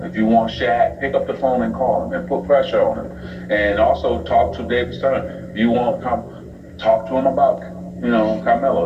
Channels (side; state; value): both; identical; correlation 1.00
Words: If you want Shaq, pick up the phone and call him and put pressure on him. And also talk to David Stern. If you want to talk to him about, you know,